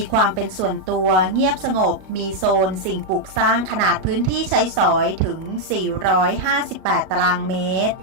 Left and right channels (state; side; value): late; left; 37 ms